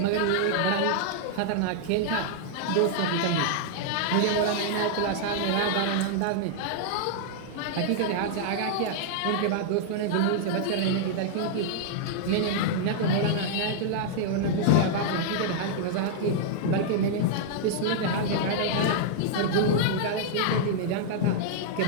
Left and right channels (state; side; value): different; both; correlation -0.01